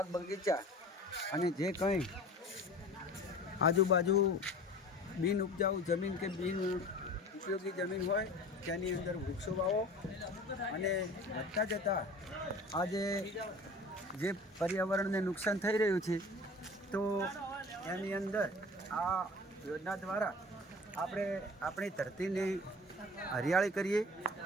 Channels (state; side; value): normal; both; correlation 0.41